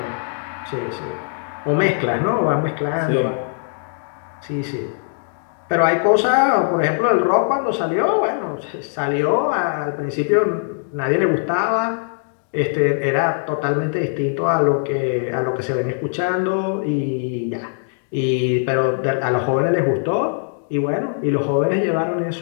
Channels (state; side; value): silent; right; digital silence